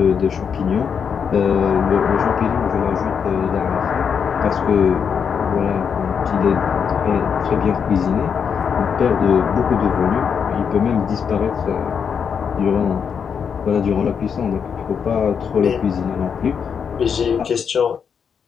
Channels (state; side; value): quieter; right; 6.9 dB